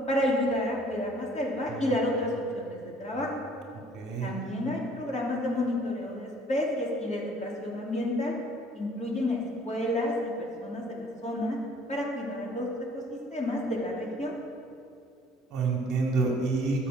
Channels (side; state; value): both; normal; correlation 0.56